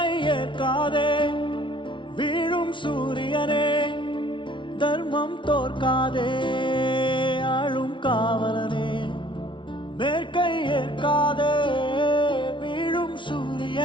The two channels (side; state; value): right; late; 0.24 ms